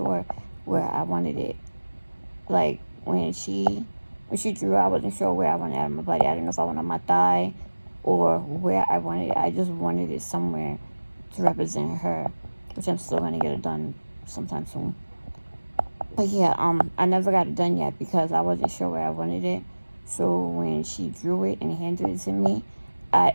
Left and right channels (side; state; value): both; inverted; correlation -1.00